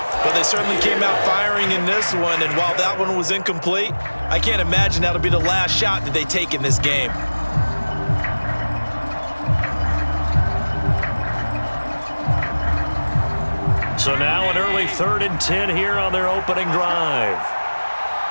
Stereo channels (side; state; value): both; inverted; correlation -1.00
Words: Well, they certainly came out firing in this one, and while that one was incomplete, I can't imagine that'll be the last shot that they take in this game. So now an early 3rd and 10 here on their opening drive.